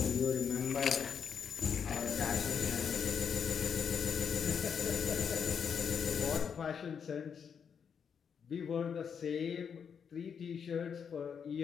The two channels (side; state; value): right; quieter; 7.0 dB